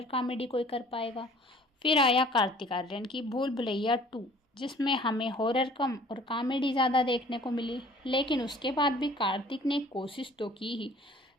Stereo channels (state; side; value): normal; both; correlation 0.52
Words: कॉमेडी कोई कर पाएगा। फिर आया कार्तिक आर्यन की भूल भुलैया 2, जिसमें हमें हॉरर कम और कॉमेडी ज़्यादा देखने को मिली, लेकिन उसके बाद भी कार्तिक ने कोशिश तो की ही।